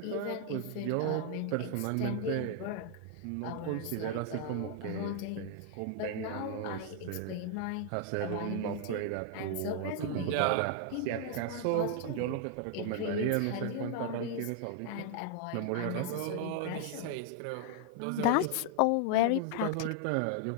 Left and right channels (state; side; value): different; both; correlation 0.00